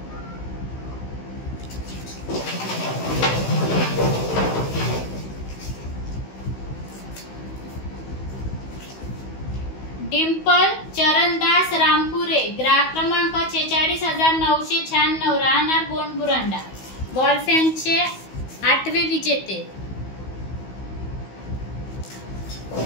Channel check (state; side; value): late; right; 16 ms